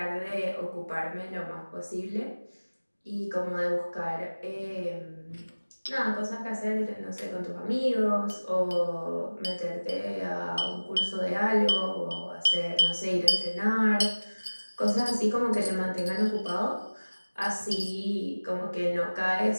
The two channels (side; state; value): both; inverted; correlation -1.00